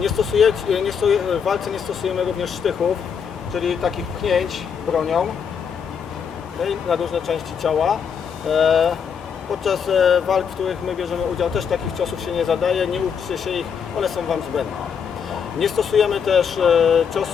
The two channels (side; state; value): right; quieter; 7.0 dB